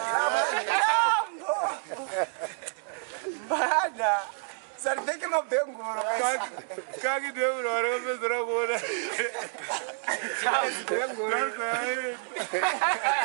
Bana. Sarveke mabengoro. Kaki deu ora bezra gora. Bengoro.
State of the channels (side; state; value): left; silent; 59 dB below the other